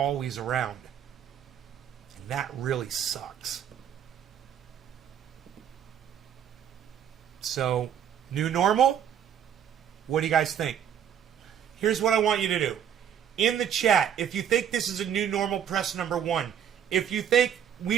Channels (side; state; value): left; quieter; 9.0 dB